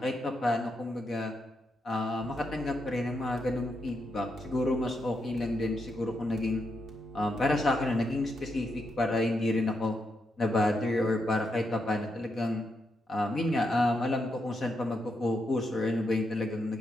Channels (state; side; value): normal; both; correlation 0.82